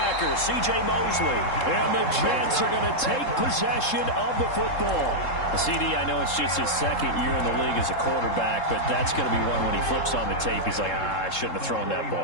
C.J. Mosley. And the Jets are going to take possession of the football. CD, I know it's just his 2nd year in the league as a quarterback, but that's going to be one when he flips on the tape. He's like, I shouldn't have thrown that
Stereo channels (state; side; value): late; right; 3.7 ms